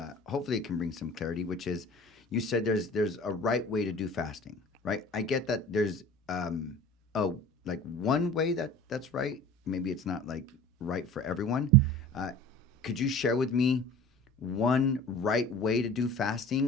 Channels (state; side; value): normal; both; correlation 0.41